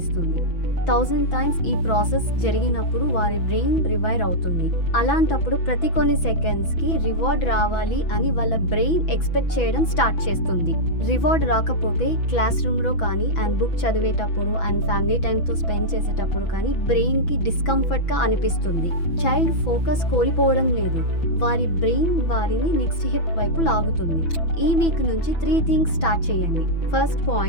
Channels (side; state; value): right; late; 6.1 ms